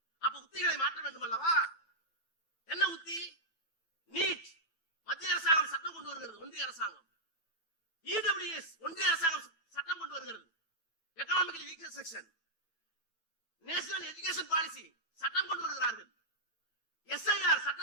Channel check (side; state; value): right; late; 9.1 ms